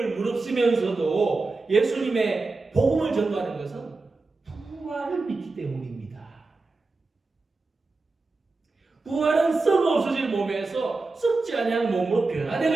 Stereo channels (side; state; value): left; quieter; 3.6 dB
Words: 무릅쓰면서도 예수님의 복음을 전도하는 것은 부활을 믿기 때문입니다. 부활은 썩어 없어질 몸에서 썩지 아니한 몸으로